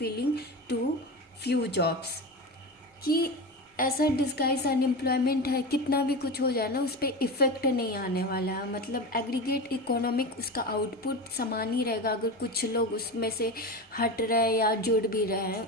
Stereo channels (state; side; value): normal; both; correlation 0.24